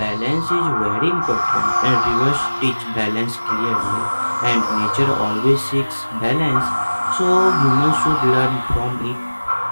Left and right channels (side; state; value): both; inverted; correlation -1.00